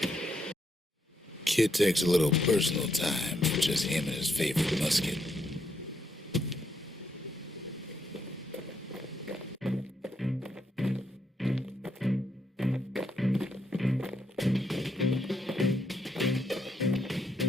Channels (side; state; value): both; normal; correlation 0.77